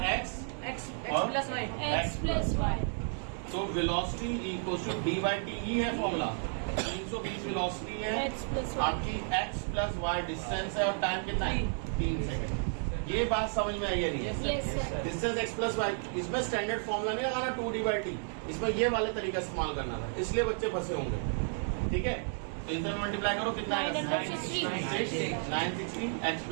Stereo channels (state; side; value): silent; left; 56 dB below the other